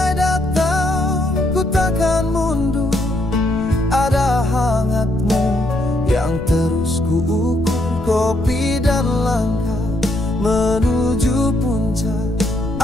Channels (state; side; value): noise; left; rumble, 12 dB below the sound